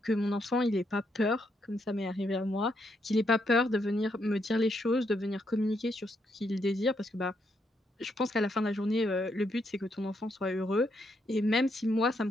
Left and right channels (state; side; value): normal; both; correlation 0.77